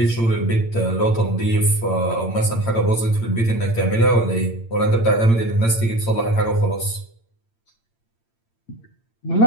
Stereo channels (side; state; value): right; late; 8.8 ms